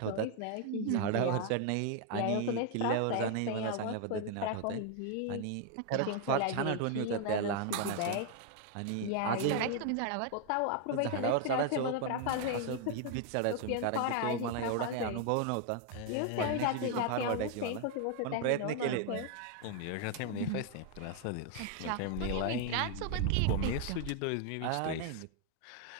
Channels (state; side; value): different; both; correlation 0.00